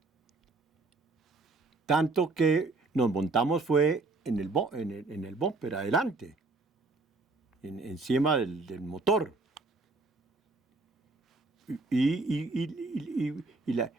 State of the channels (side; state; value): left; quieter; 3.4 dB